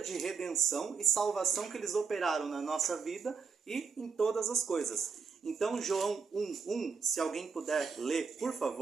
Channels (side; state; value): left; quieter; 5.4 dB